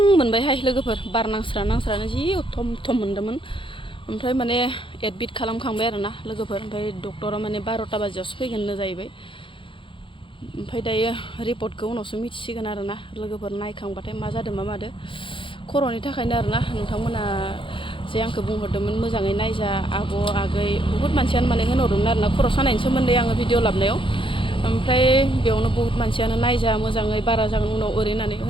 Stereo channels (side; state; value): right; late; 0.25 ms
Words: मोनबायहाय लोगोफोर बार नांस्रानो जि थम मोन्दोंमोन ओमफ्राय माने एडमिट खालामखांबाय आरो ना लोगोफोर ओमफ्राय डक्टरा माने 12टा बाजियावसो फैगोननो जाहैबाय ओमफ्राय दायो रिपर्टखौ उनावसो मिथिसिगोन आरो ना लोगोफोर नायखांबाथाय मा जादों मा मादो खर'नि थाखायनो आरो ना नोंथांमोना जे आंखौ बुंहरदोंमोन मोजाङै नायजा आब' आगै बुहुत मानसियानो माने होनहरदोंमोन आरो ना खर' सानायनि सोमोन्दै आङो भिडिअ लाबनायाव ओमफ्राय बेयावनो बुहुत मानसियानो नायजा मोजाङै बारा जागोन उनाव ओरै होननानै